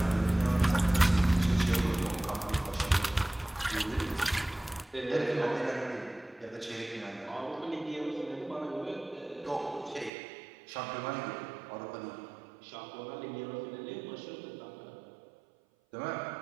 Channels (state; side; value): drops out; left; at 10.1 s